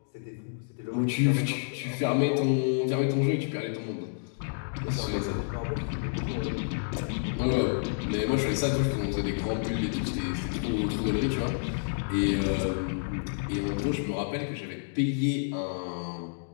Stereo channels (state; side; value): silent; right; digital silence